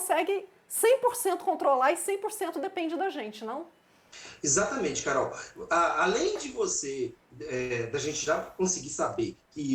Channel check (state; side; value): identical; both; correlation 1.00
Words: 100% controlar e 100% depende da gente, não? Exatamente, Carol. Além de da gente já conseguir saber